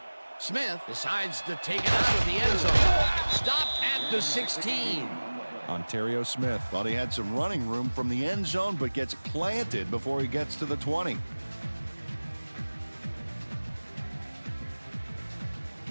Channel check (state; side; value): inverted; both; correlation -1.00